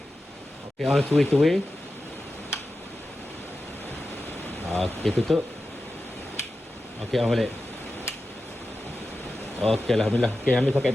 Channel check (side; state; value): both; normal; correlation 0.92